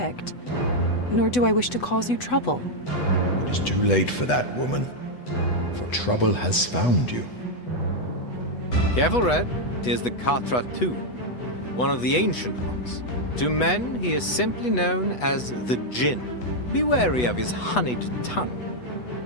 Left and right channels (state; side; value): late; right; 8.1 ms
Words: nor do I wish to cause you trouble. It is too late for that, woman, for trouble has found you. Careful, Red. 'Tis the Katra too, one of the ancient ones. To men, he is simply known as the Jinn. Be wary of his honeyed tongue.